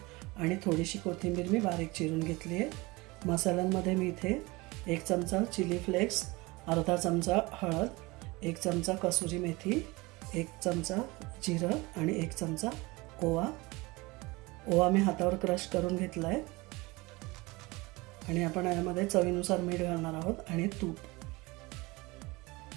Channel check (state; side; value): quieter; left; 23.2 dB